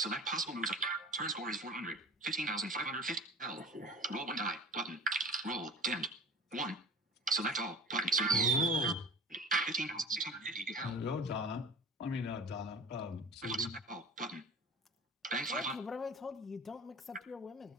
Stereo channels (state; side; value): normal; both; correlation 0.38